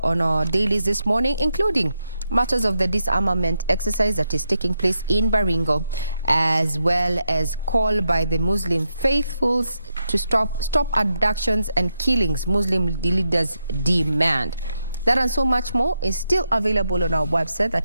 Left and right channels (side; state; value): both; inverted; correlation -0.84